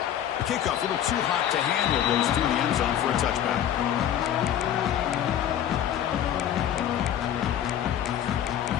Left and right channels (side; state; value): right; quieter; 10.4 dB